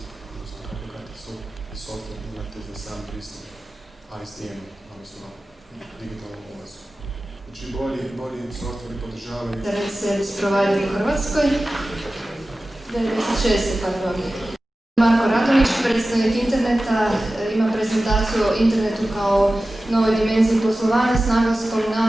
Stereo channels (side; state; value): both; normal; correlation 0.95